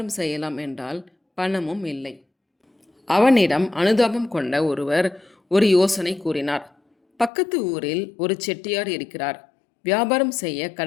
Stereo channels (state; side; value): drops out; right; at 7.3 s